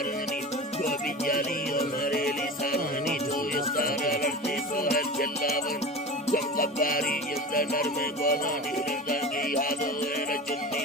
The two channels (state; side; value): normal; both; correlation 0.31